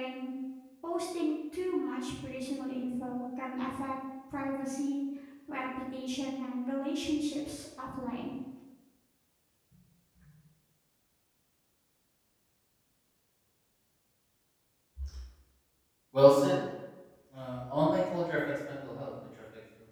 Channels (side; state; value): both; identical; correlation 1.00